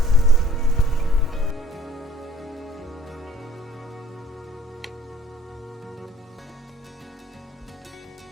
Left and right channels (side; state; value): both; normal; correlation 0.53